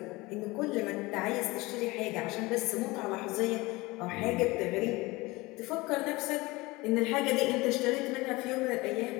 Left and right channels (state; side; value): quieter; right; 22.1 dB